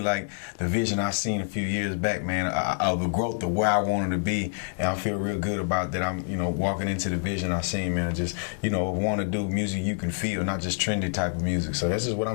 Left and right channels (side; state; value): right; silent; digital silence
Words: the vision I seen a few years back, man, of the growth of where I wanted to be. And I feel real good about that. I'm, walking into the vision I seen, man. Just, want to do music you can feel, not just trendy type of music. So that's just what